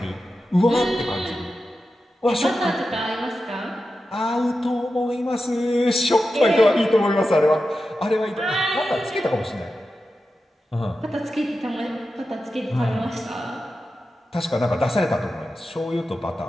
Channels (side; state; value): both; normal; correlation 0.91